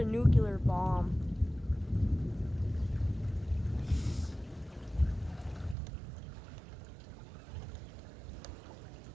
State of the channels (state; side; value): drops out; left; at 5.8 s